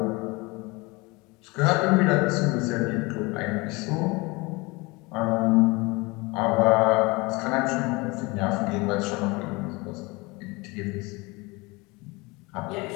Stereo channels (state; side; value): quieter; right; 25.0 dB